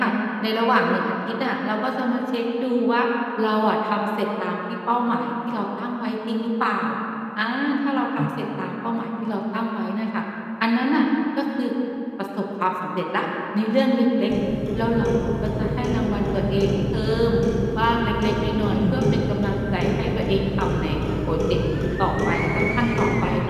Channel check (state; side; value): identical; both; correlation 1.00